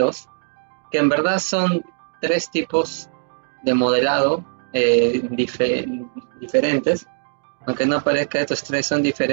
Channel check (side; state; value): left; silent; digital silence